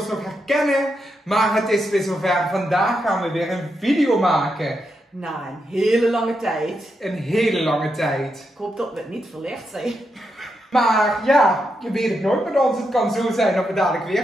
nog herkennen, maar het is weer zover. Vandaag gaan we weer een video maken. Na een hele lange tijd. Een hele lange tijd. Ik hoop dat we het niet verlegd zijn. Maar ja, je weet het nooit met ons. Het kan zo zijn dat we dadelijk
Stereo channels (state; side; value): normal; both; correlation 0.84